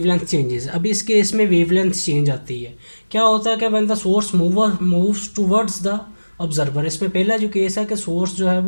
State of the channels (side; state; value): both; inverted; correlation -1.00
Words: changes. अब इस केस में वेवलेंथ चेंज आती है। क्या होता है कि when the source moves towards the observer. इसमें पहला जो केस है कि सोर्स जो है